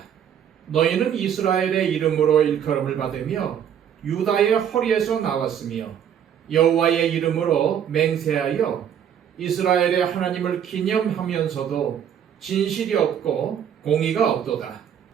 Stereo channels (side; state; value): left; quieter; 9.0 dB